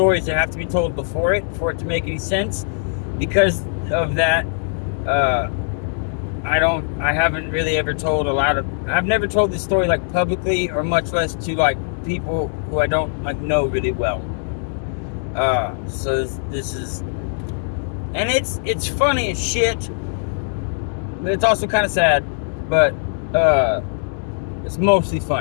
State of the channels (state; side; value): silent; right; digital silence